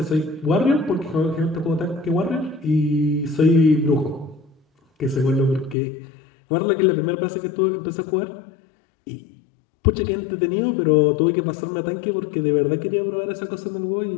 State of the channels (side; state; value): right; drops out; at 5.8 s